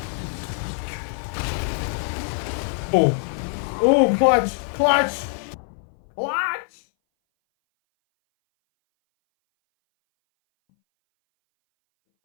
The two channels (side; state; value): right; silent; 60 dB below the other